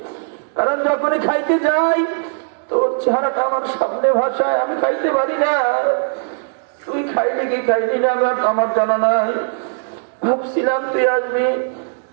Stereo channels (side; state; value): left; silent; 67 dB below the other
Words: কারণ যখনই খাইতে যাই তোর চেহারাটা আমার সামনে ভাষায়, আমি খাইতে পারি না। তুই খাইলি কি খাইলি না আমার জানা নাই। ভাবছিলাম তুই আসবি,